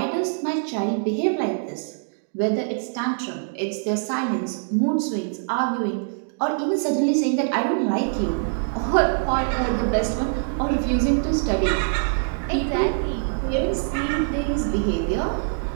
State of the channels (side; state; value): left; silent; digital silence